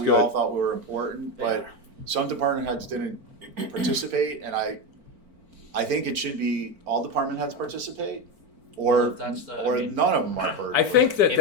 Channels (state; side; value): late; left; 4.4 ms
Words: we all good. thought were important, They but are. some department heads didn't participate, and I think it should be all department heads participate. or that's the, or I mean, none of them are burden. I think that If-